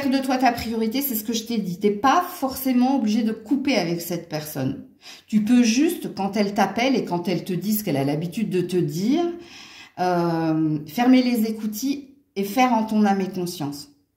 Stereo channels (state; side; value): identical; both; correlation 1.00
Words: de toi ta priorité, c'est ce que je t'ai dit. Tu n'es pas forcément obligé de couper avec cette personne. Tu peux juste, quand elle t'appelle et quand elle te dit ce qu'elle a l'habitude de te dire, fermer les écoutilles et faire en ton âme et conscience.